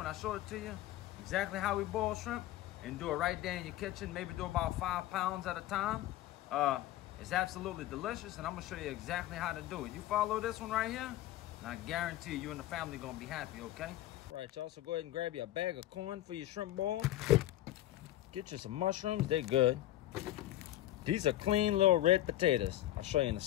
I show it to you, exactly how we boil shrimp, and do it right there in your kitchen. Maybe do about 5 pounds at a time. It's absolutely delicious, and I'm gonna show you exactly how to do it. You follow this one right here, and I guarantee you and the family gonna be happy, okay? Right, y'all, so go ahead and grab you a bag of corn for your shrimp ball. Get you some mushrooms, they're good. These are clean little red potatoes. I'll show you in a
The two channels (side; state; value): right; quieter; 14.3 dB